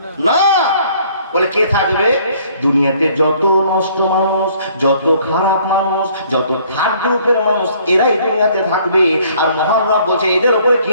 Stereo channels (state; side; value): inverted; both; correlation -0.60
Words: না। বলে কে থাকবে? দুনিয়াতে যত নষ্ট মানুষ, যত খারাপ মানুষ, যত থার্ড গ্রুপের মানুষ, এরাই দুনিয়াতে থাকবে। আর মহান রব বলছে এদের উপরে